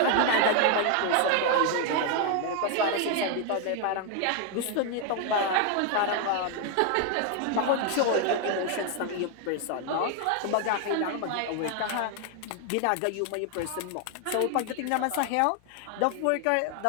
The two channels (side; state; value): both; different; correlation 0.00